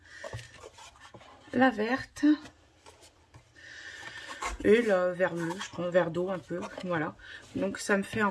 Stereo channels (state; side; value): identical; both; correlation 1.00